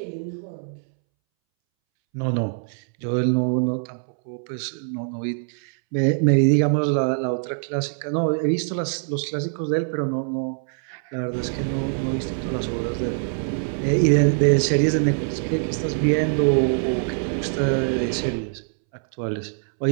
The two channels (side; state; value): left; silent; 63 dB below the other